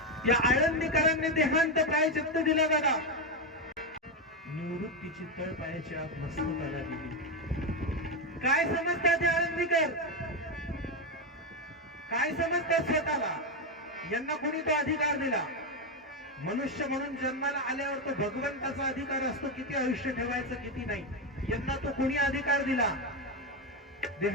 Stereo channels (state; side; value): normal; both; correlation 0.09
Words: या आळंदीकरांनी देहांत प्रायश्चित्त दिला दादा. निवृत्तीची तळ पायाची आत मस्तकाला दिली. काय समजतात हे आळंदीकर? काय समजतात स्वतःला? यांना कोणी तो अधिकार दिला? मनुष्य म्हणून जन्माला आल्यावर तो भगवंताचा अधिकार असतो किती आयुष्य ठेवायचं किती नाही. यांना तो कोणी अधिकार दिला